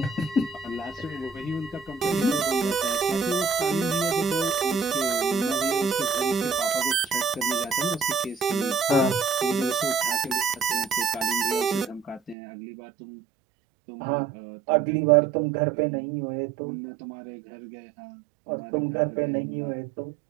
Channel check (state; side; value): drops out; left; at 12.4 s